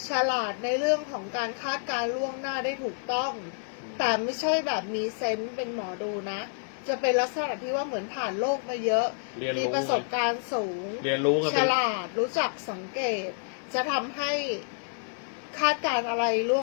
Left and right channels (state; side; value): silent; right; 59 dB below the other